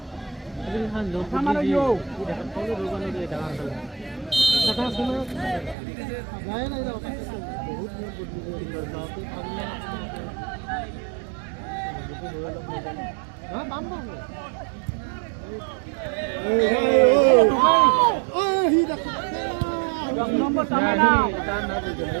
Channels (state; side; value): drops out; left; at 5.8 s